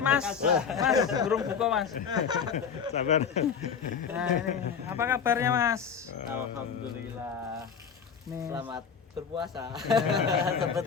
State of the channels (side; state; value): right; quieter; 6.7 dB